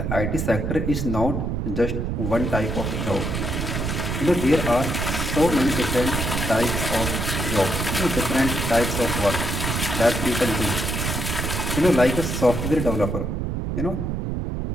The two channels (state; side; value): noise; right; rumble, 1 dB below the sound